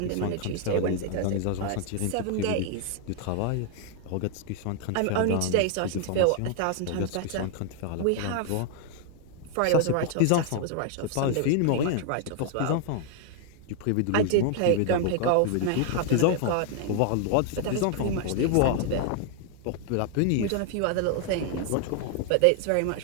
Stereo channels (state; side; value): different; both; correlation 0.00